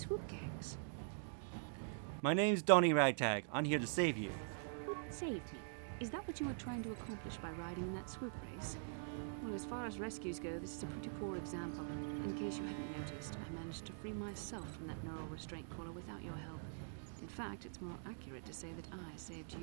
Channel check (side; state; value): left; silent; digital silence